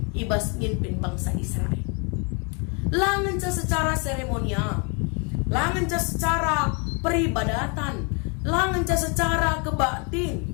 ibas mimpin bangsa Israel. Langan secara seremonial, langan secara peribadatan, langan ca secara kebatin,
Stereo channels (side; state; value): right; quieter; 34.7 dB